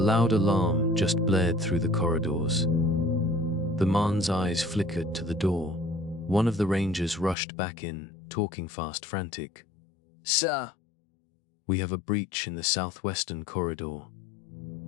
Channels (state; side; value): drops out; right; at 7.4 s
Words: alarm just blared through the corridors. The man's eyes flickered to the door. One of the rangers rushed back in, talking fast, frantic. Sir, We have a breach in the southwestern corridor.